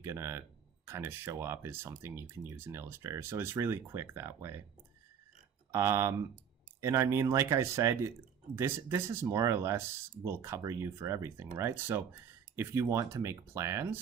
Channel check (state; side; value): quieter; left; 7.7 dB